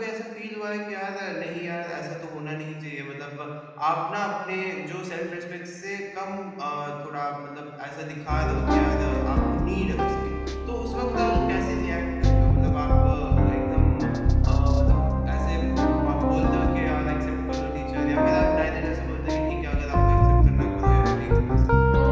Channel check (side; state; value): both; identical; correlation 1.00